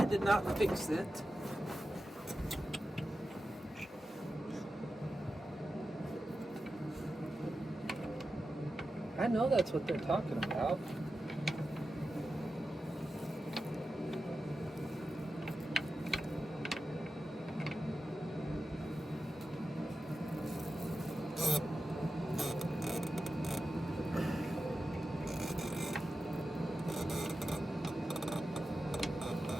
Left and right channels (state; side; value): normal; both; correlation 0.92